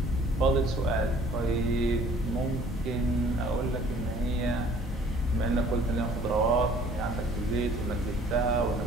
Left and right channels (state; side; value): normal; both; correlation 0.54